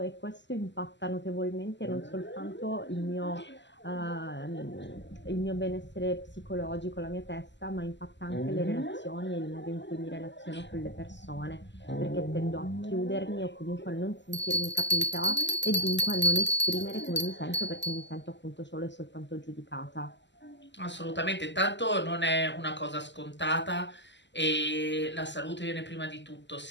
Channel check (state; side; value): late; right; 0.52 ms